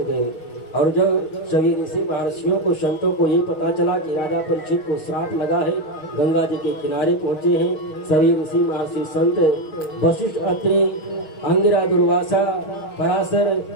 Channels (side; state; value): right; late; 6.4 ms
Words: और जब सभी ऋषि महर्षियों को, संतों को ये पता चला कि राजा परीक्षित को श्राप लगा है, गंगा जी के किनारे पहुंचे हैं सभी ऋषि महर्षि संत, वशिष्ठ, अत्रि, अंगिरा, दुर्वासा, पराशर,